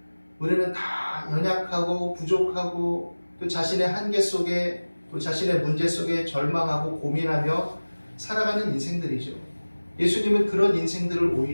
우리는 다 연약하고 부족하고 또 자신의 한계 속에 또 자신의 문제 속에 절망하고 고민하며 살아가는 인생들이죠. 예수님은 그런 인생들을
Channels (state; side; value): inverted; both; correlation -1.00